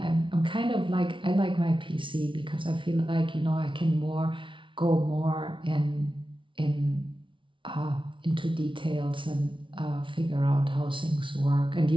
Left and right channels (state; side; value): late; left; 0.25 ms